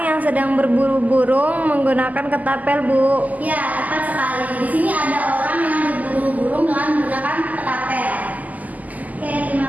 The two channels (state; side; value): late; left; 0.078 ms